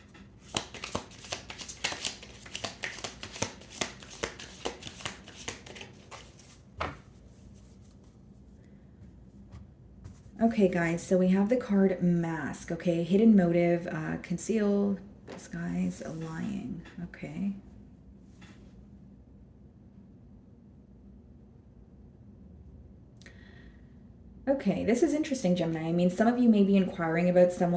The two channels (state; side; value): identical; both; correlation 1.00